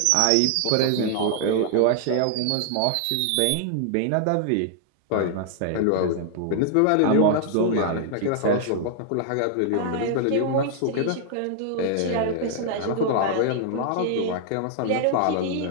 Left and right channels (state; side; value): different; both; correlation 0.00